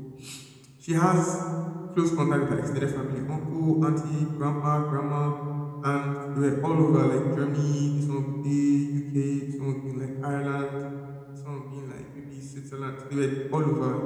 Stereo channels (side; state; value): both; identical; correlation 1.00